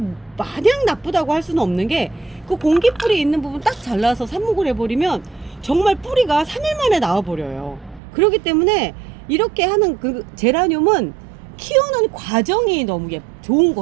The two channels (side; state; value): left; drops out; at 8.0 s